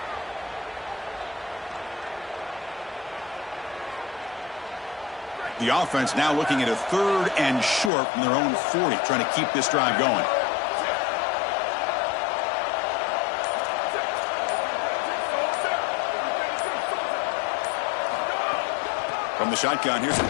The offense now looking at a 3rd and short from their own 40, trying to keep this drive going. From the shotgun, here's an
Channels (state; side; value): drops out; right; at 7.9 s